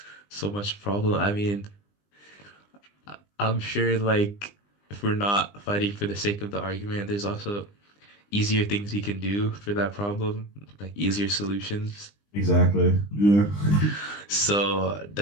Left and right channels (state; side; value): late; right; 20 ms